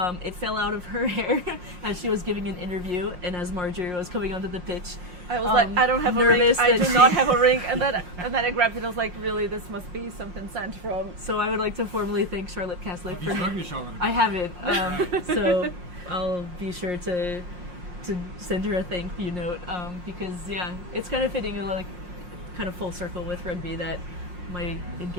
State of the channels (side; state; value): left; late; 5.6 ms